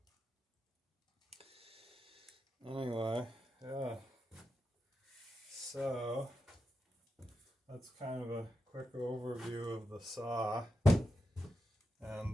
Anyway, yeah. So that's kind of a quick overview of the saw.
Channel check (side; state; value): both; normal; correlation 0.88